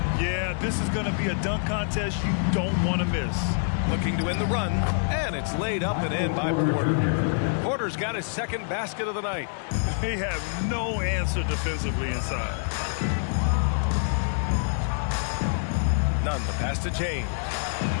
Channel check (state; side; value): silent; right; digital silence